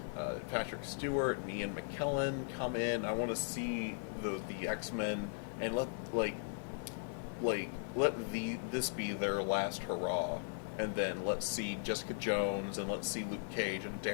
Patrick Stewart and Ian McKellen come in. I want to see the X-Men and let this be their last hurrah. And then let's see Jessica Jones, and let's see Luke Cage and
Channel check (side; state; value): right; silent; 52 dB below the other